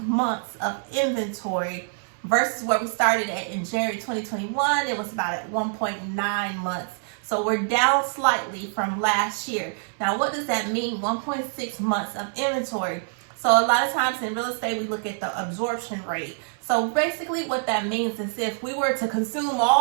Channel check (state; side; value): silent; left; 60 dB below the other